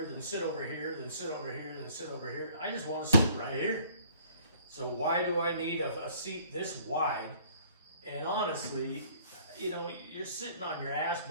then sit over here, then sit over here, then sit over here. I just wanna sit right here. So why do I need a seat this wide? And honestly, you know, you're sitting on your ass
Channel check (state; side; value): inverted; both; correlation -0.56